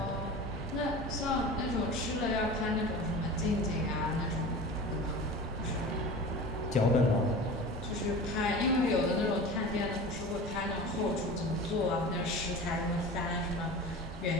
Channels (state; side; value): normal; both; correlation 0.35